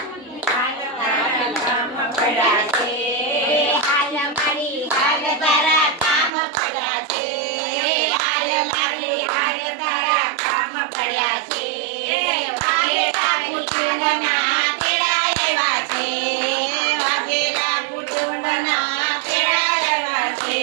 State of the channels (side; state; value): left; drops out; at 6.3 s